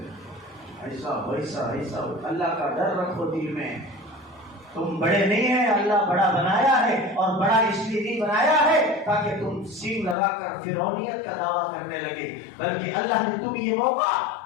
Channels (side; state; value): right; drops out; at 10.2 s